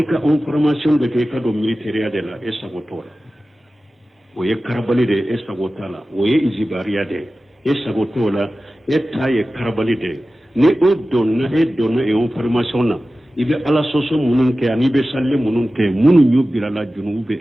ka information de ke ka do militaire de la esagotola o ye karabali de esagotala o ye izibariya de esagotola etaye karabali de ni o donna e information na ibe ala soso munun ke ani be salle munun ke munun yubira la junube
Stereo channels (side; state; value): both; normal; correlation 0.95